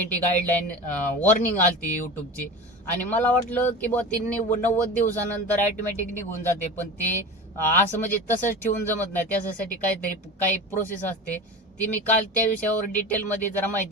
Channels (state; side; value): normal; both; correlation 0.31